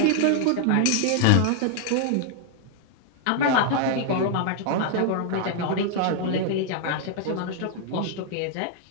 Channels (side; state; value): both; different; correlation 0.00